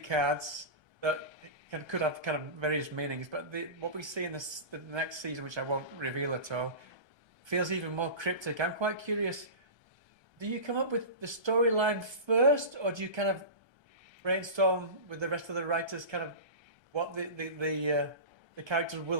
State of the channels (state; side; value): late; left; 1.3 ms